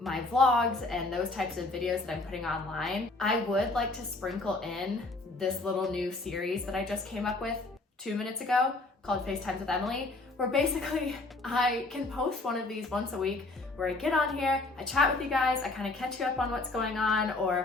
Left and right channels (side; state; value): right; quieter; 3.1 dB